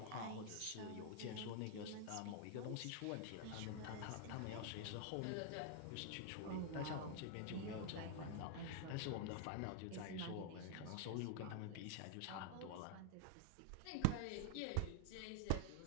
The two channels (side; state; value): both; different; correlation 0.00